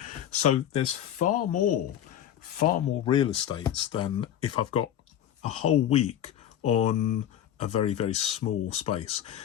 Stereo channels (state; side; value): quieter; right; 10.7 dB